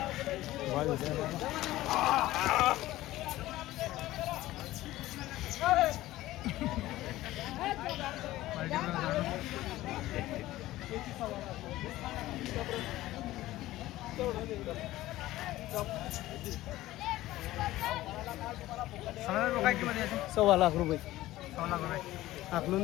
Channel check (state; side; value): quieter; right; 16.2 dB